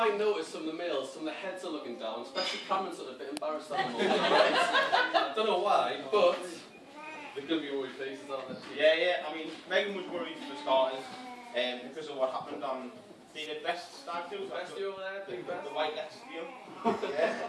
notice from the males, some of the heads are looking down, especially Cameron's sort of a bit embarrassed at the moment. Right? I don't know why, but they're going to be worried faces, aren't they? Yeah. I mean, Megan was worried for starters because of what happened on David Best's stag do. Best do over there, big best. The White Leicester deal.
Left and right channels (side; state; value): both; identical; correlation 1.00